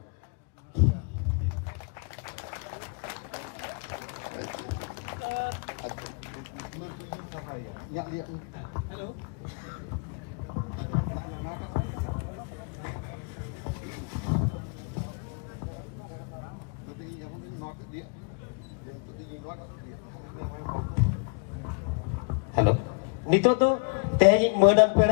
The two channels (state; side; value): quieter; right; 35.1 dB